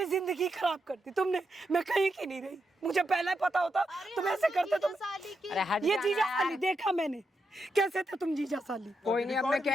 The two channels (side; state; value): both; normal; correlation 0.84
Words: जिंदगी खराब कर दी तुमने। मैं कहीं की नहीं रही, मुझे पहले पता होता तुम ऐसे करते। तुम अरे हट ये जाना जीजा यार। साली देखा मैंने, कैसे थे तुम जीजा साली। कोई नहीं, अब मैं